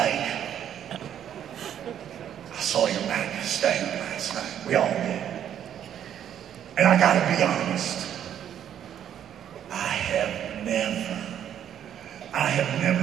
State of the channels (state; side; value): quieter; left; 9.9 dB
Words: saw your Magnus thing last night. We all did. And I gotta be honest. I have